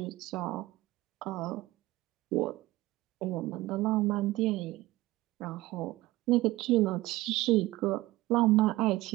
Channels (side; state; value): left; quieter; 18.4 dB